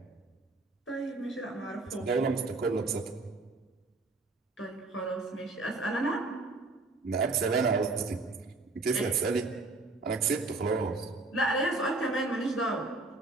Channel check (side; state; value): left; quieter; 3.3 dB